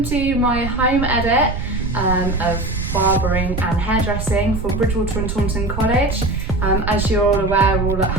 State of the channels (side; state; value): right; noise; rumble, 5 dB below the sound